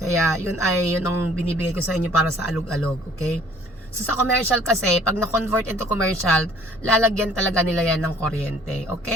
yun ang binibigay ko sa inyo para sa alog-alog, okay? So, sa commercial kasi, pag na-convert into commercial, lalagyan talaga nila yan ng kuryente.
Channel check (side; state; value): both; normal; correlation 0.56